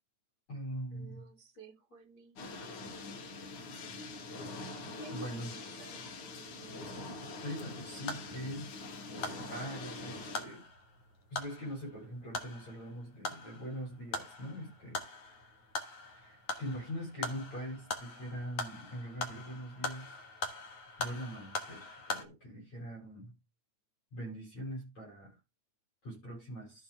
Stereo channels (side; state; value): right; late; 9.3 ms